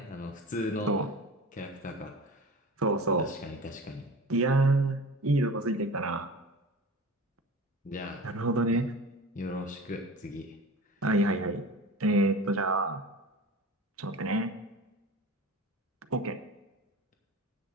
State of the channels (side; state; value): both; normal; correlation 0.35